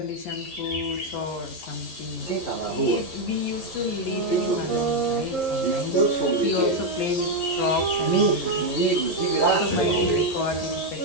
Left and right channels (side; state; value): right; late; 11 ms